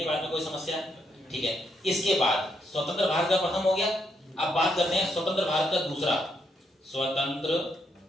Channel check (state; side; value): normal; both; correlation 0.77